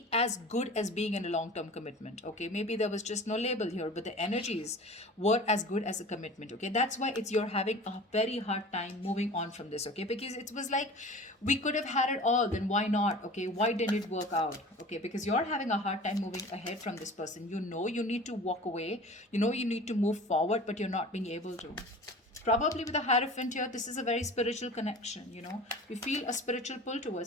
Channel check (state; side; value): normal; both; correlation 0.39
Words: as good as being in a long term commitment, okay? Maybe there was just no label here, but the energies were as good as a commitment, okay? That's why it's you're having a very hard time moving on from this, okay? Because it was like, we could have had it all, then why not? Okay, why didn't it work out? Okay, because you're having a hard time moving ahead from this person. You know you need to walk away, you know you need to move forward, but you're not being able to. Probably with a Hierophant here, this is a very spiritual connection, you know. You feel a spiritual pull